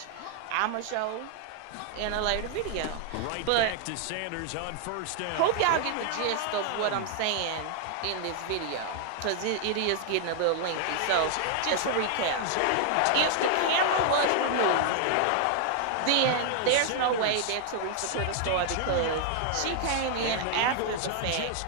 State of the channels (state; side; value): different; both; correlation 0.00